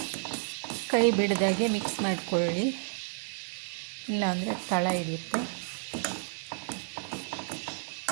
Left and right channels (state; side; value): silent; left; digital silence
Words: ಕೈ ಬಿಡದಾಗೆ ಮಿಕ್ಸ್ ಮಾಡಿಕೊಳ್ಳಿ, ಇಲ್ಲಾಂದರೆ ತಳ ಹಿಡಿಯುತ್ತೆ.